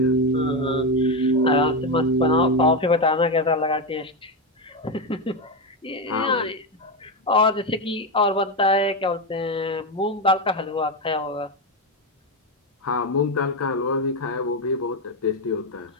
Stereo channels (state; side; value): normal; both; correlation 0.11